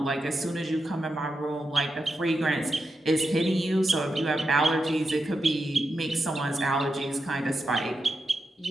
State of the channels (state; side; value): normal; both; correlation 0.87